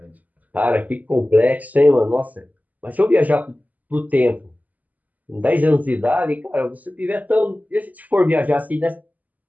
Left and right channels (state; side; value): late; left; 0.079 ms